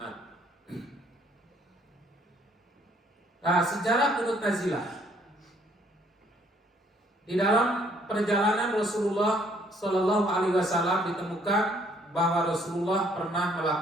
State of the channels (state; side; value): normal; both; correlation 0.64